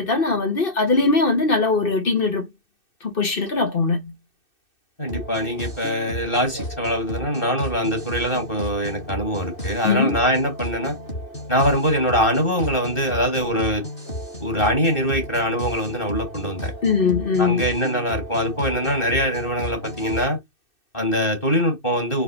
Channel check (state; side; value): late; right; 2.6 ms